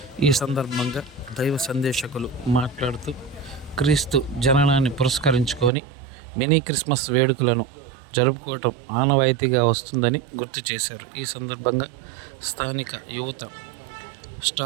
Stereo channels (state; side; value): drops out; left; at 5.7 s